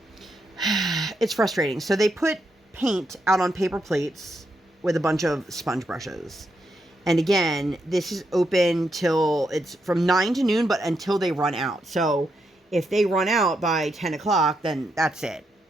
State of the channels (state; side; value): normal; both; correlation 0.81